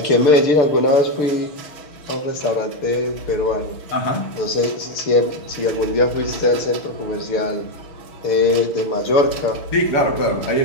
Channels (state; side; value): late; right; 6.8 ms